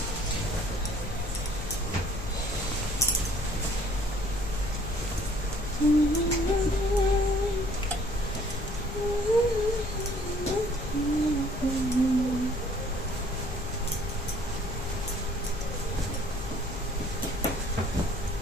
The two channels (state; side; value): noise; left; rumble, 9 dB below the sound